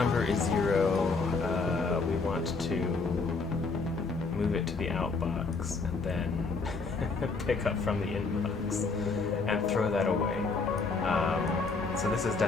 is 0, we want to move it to the outbox and then pick up from the inbox and throw that away. So this is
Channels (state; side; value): quieter; right; 4.2 dB